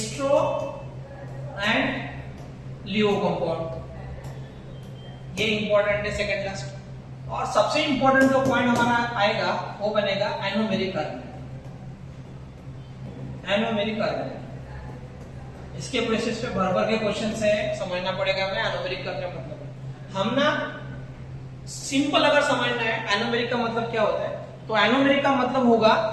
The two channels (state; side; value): identical; both; correlation 1.00